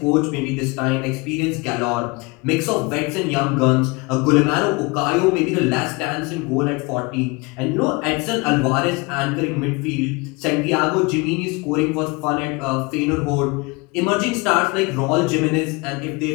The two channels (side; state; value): right; quieter; 26.4 dB